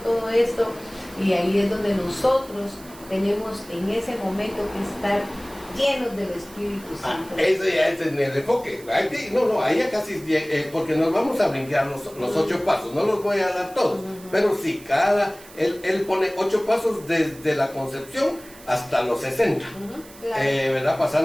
todo esto. Y ahí es donde nosotros tenemos en ese momento que estar llenos del Espíritu Santo. Eso ya es en el enfoque. Ahí ya casi, porque nos vamos a brincar los 8 pasos, no los voy a dar todos, pero sí, él pone 8 pasos desde la concepción hasta los 60, claro. ¿Verdad?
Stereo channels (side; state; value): right; noise; hiss, 21 dB below the sound